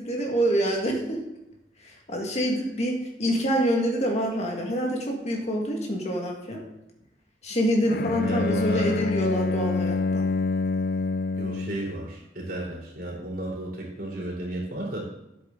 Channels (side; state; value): both; normal; correlation 0.61